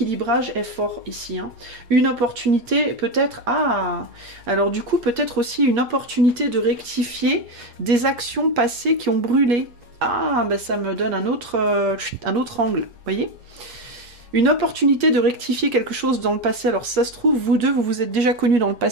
est fort ici. Hein. Une opportunité, peut-être... Ah! Alors, du coup, peut-être aussi une opportunité de rectifier des actions passées qui ont brûlé. Ah, ben ça me donne un autre angle, vous voyez ? Une opportunité de rectifier quelque chose dans le passé. Alors ça se trouve, vous deux, vous vous êtes déjà connus dans le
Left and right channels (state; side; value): late; left; 8.4 ms